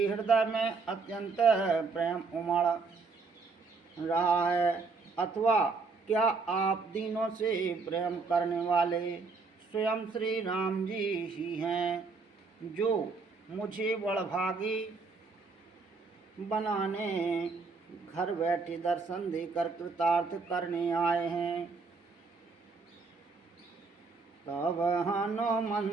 हृदय में अत्यंत प्रेम उमड़ रहा है। अथवा क्या आप दीनों से प्रेम करने वाले स्वयं श्री राम जी ही हैं, जो मुझे बड़भागी बनाने घर बैठे दर्शन देकर कृतार्थ करने आए हैं। तब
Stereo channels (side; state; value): left; quieter; 4.4 dB